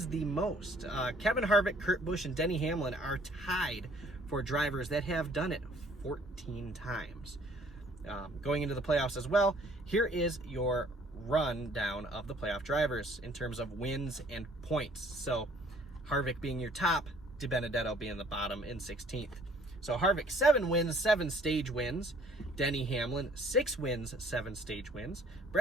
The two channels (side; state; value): both; normal; correlation 0.58